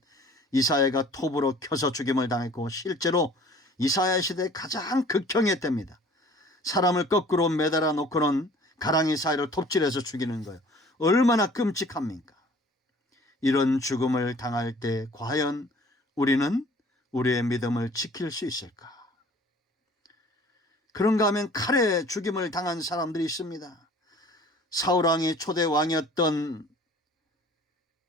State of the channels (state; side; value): normal; both; correlation 0.50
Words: 이사야가 톱으로 켜서 죽임을 당했고, 실제로 이사야 시대의 가장 극형의 때입니다. 사람을 거꾸로 매달아 놓고는 가랑이 사이를 톱질해서 죽이는 거예요. 얼마나 끔찍합니까? 이런 죽음을 당할 때 과연 우리는 우리의 믿음을 지킬 수 있을까? 그런가 하면 칼에 죽임을 당한 사람들이 있습니다. 사울왕이 초대 왕이었던